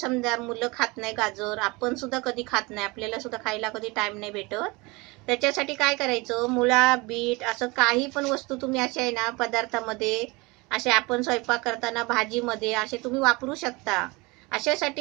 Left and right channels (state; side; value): quieter; left; 25.0 dB